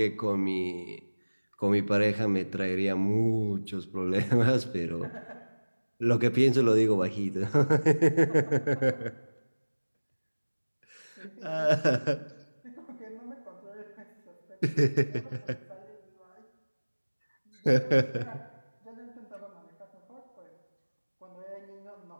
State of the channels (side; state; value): both; inverted; correlation -1.00